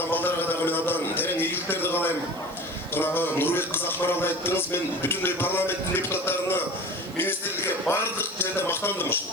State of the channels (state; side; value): noise; right; hiss, 22 dB below the sound